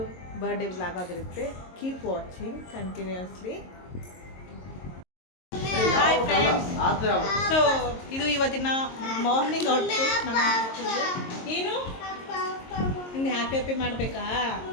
ಬರ್ಡೇ ವ್ಲಾಗ್ ಆಗಿರುತ್ತೆ. Keep watching continuously. Hi friends, so ಇದು ಇವತ್ತಿನ ಮಾರ್ನಿಂಗ್ ಔಟ್ಫಿಟ್. ನಮ್ಮ ಏನು ನಿಮ್ಗೆ ಹ್ಯಾಪಿ ಮಾಡಬೇಕಾ?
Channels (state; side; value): late; right; 22 ms